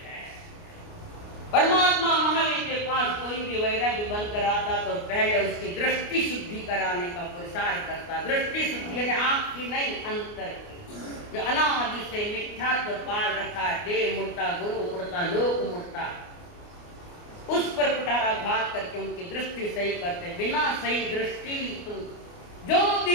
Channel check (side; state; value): right; late; 29 ms